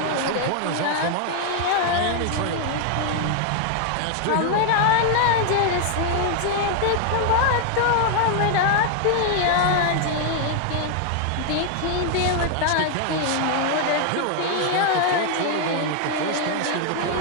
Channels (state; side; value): different; both; correlation 0.00